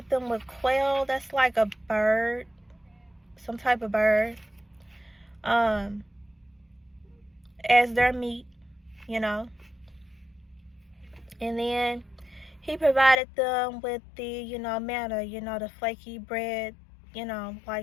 them with quail, that's like a bird, some type of bird, as their meat, And then he provided them with the, manna, the flaky bread,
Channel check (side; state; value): right; drops out; at 13.2 s